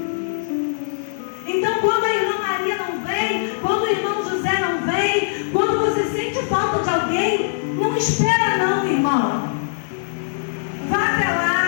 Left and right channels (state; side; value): silent; right; digital silence